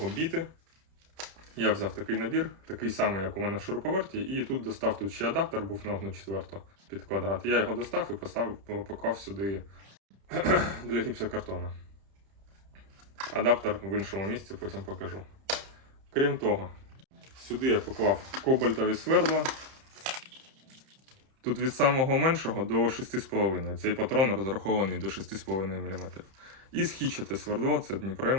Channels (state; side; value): late; left; 31 ms